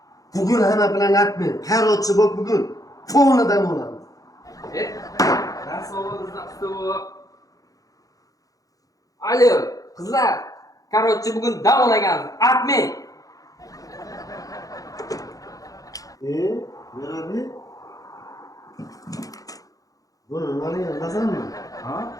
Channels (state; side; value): late; right; 0.17 ms